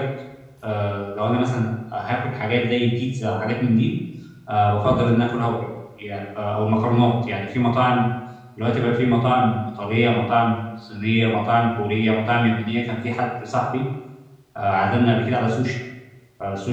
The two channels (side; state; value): both; identical; correlation 1.00